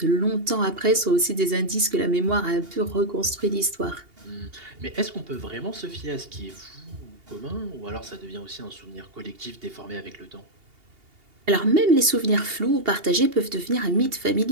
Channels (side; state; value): left; late; 2.8 ms